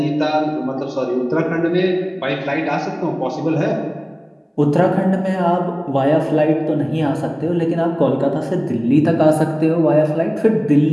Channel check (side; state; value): both; identical; correlation 1.00